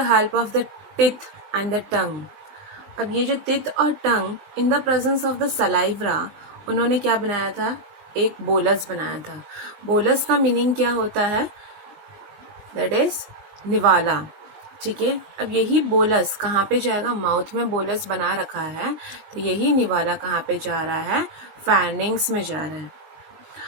help of the teeth and the tongue. अब ये जो टिथ और tongue in the presence of the saliva, उन्होंने क्या बनाया था, एक बोलस बनाया था। बोलस का मीनिंग क्या होता है, दैट इज निवाला। ठीक है, अब यही बोलस कहाँ पे जाएगा, माउथ में बोलस बना रखा है, तो यही निवाला कहाँ पे जा रहा है, फैनिंग्स में जा रहा है।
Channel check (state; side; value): late; left; 20 ms